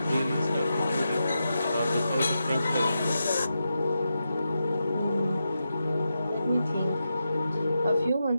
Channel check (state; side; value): inverted; both; correlation -0.88